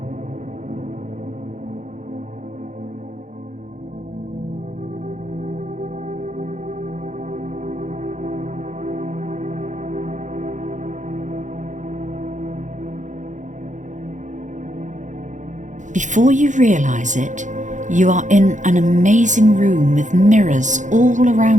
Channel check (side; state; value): left; late; 0.36 ms